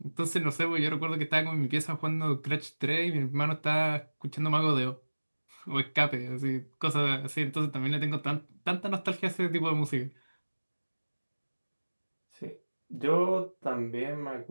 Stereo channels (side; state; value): both; inverted; correlation -1.00